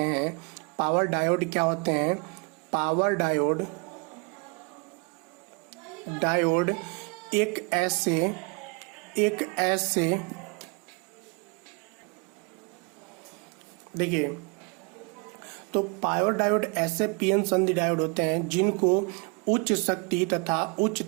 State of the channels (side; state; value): left; quieter; 32.4 dB